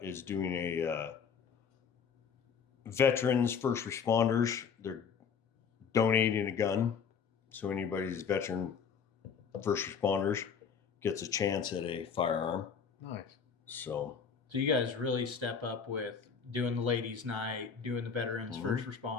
is doing a veterans first responders. They're donating a gun, so anybody's veteran first responders gets a chance at a firearm. Nice. So you guys really step up with doing the ladies' night, doing the veterans first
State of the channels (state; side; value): quieter; right; 6.5 dB